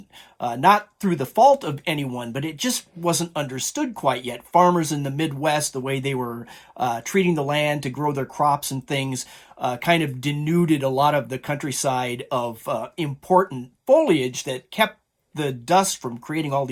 not through the fault of anyone, but it just wasn't understood quite yet. Farmers in the Midwest, the way they were treating the land to grow their crops and things, kind of denuded a lot of the countryside of important foliage that kept the dust from creating all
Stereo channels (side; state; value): both; identical; correlation 1.00